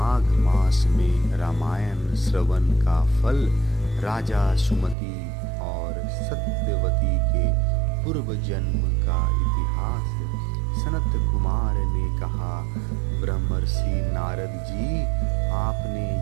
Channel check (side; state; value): left; drops out; at 5.0 s